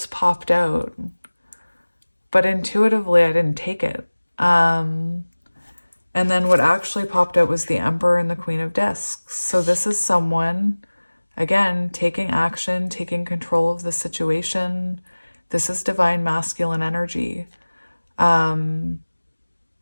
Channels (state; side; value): inverted; both; correlation -1.00